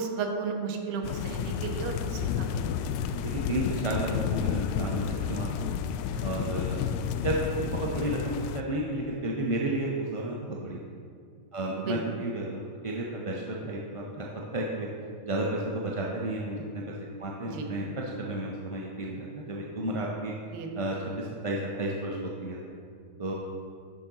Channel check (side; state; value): right; late; 1.9 ms